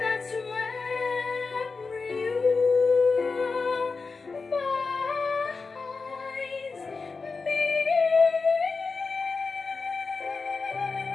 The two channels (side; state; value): right; quieter; 4.4 dB